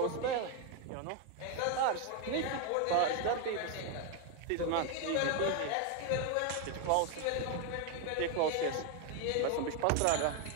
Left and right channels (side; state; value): both; different; correlation 0.01